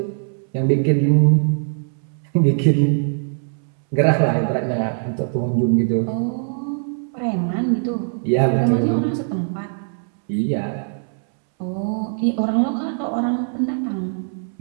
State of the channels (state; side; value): silent; left; 64 dB below the other